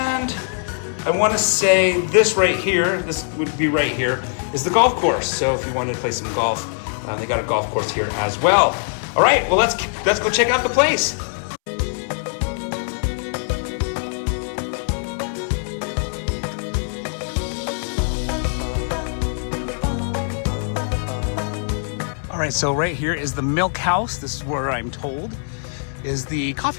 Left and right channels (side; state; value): right; silent; 64 dB below the other